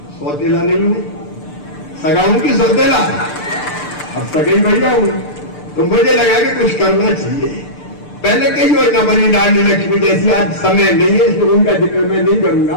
सौतेला नहीं हूं, सगा हूं कि सौतेला? अब सगई भैया हूं, तो मुझे लगा कि कुछ करना चाहिए। पहले कई योजना बनी, लाडली लक्ष्मी जैसी, आज समय नहीं है इसलिए उनका जिक्र मैं नहीं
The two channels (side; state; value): right; late; 6.7 ms